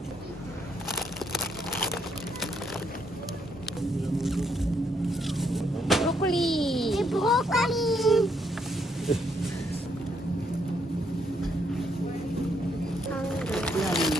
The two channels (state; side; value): normal; both; correlation 0.73